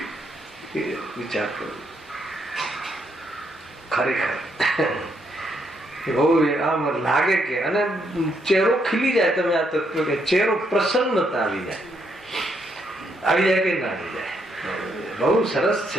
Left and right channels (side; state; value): both; normal; correlation 0.75